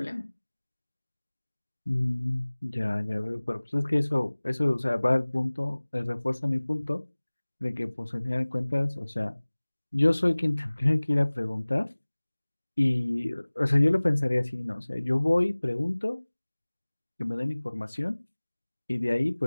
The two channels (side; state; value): both; inverted; correlation -1.00